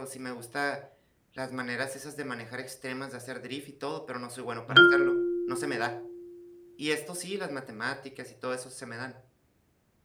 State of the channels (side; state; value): both; identical; correlation 1.00